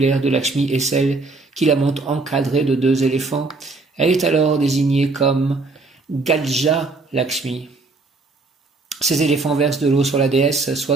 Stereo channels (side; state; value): left; quieter; 3.6 dB